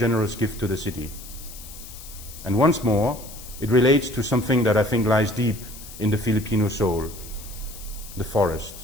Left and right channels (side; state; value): left; noise; hiss, 15 dB below the sound